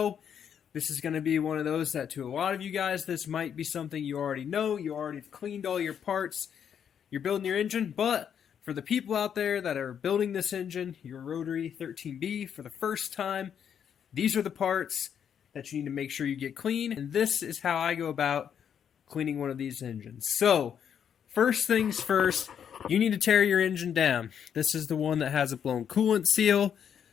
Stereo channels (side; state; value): right; quieter; 8.3 dB